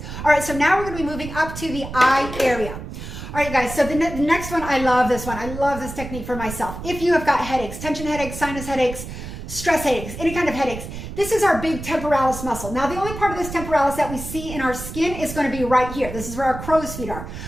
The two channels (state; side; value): noise; right; rumble, 9 dB below the sound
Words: All right, so now we're going to be moving up to the eye area. All right, guys, so the next one, I love this one. I love this technique for myself. If you have got headaches, tension headaches, sinus headaches, stress headaches, any kind of headaches, this is our big temporalis muscle. Now, the only part of this temporalis that we see in our skin is going to be right here. This is where our crow's feet are.